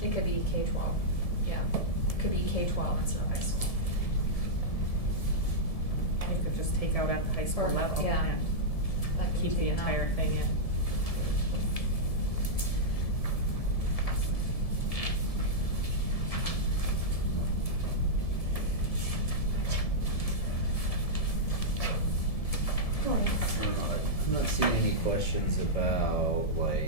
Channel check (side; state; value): right; late; 1.7 ms